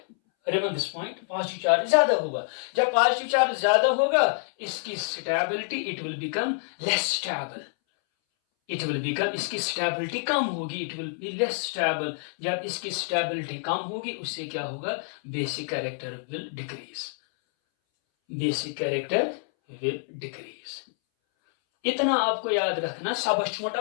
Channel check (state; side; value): silent; right; 60 dB below the other